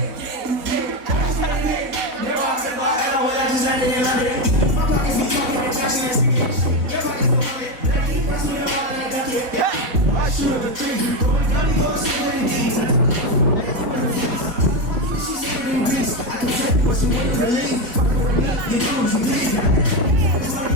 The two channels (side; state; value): left; late; 4.1 ms